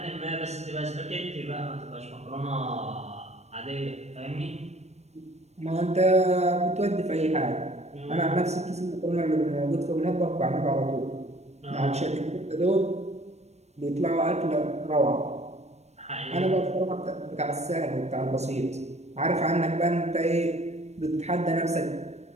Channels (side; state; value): left; late; 0.32 ms